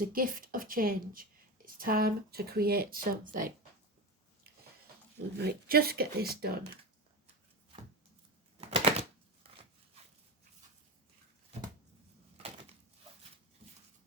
a gift of change. It's time to create something. Right, just get this done.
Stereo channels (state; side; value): normal; both; correlation 0.20